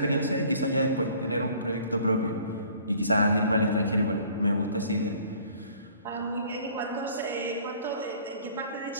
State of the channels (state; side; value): inverted; both; correlation -0.54